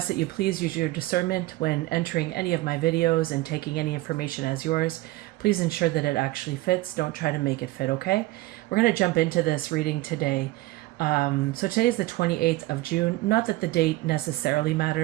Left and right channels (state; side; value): quieter; left; 18.5 dB